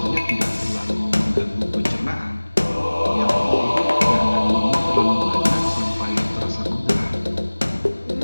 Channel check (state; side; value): inverted; both; correlation -1.00